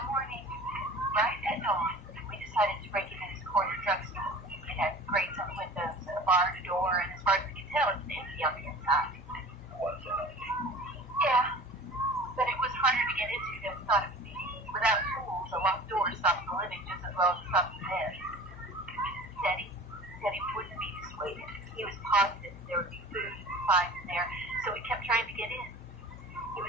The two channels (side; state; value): both; normal; correlation 0.40